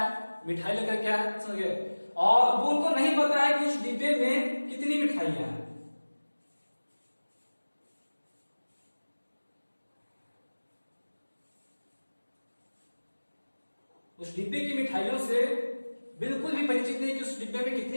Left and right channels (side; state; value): both; inverted; correlation -1.00